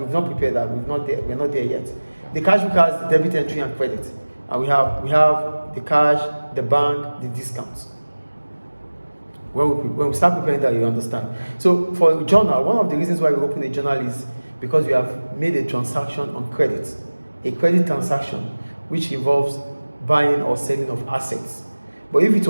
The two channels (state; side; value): inverted; both; correlation -1.00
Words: not prepared that. We're not there yet. The cash book has the debit entry and credit, and we have the cash, the bank, the discounts. When we start preparing that, you understand. So for a journal, one of the reasons why we open a journal is because we have made a transaction on credit, a credit transaction, which involves buying or selling of assets. But if it